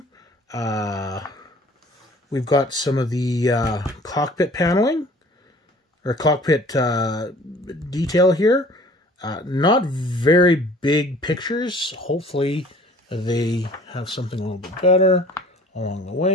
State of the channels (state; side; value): normal; both; correlation 0.50